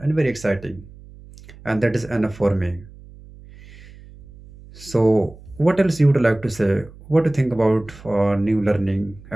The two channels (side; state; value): right; noise; hum, 20 dB below the sound